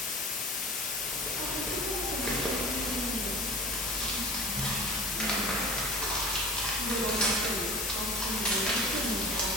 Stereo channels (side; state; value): both; normal; correlation 0.39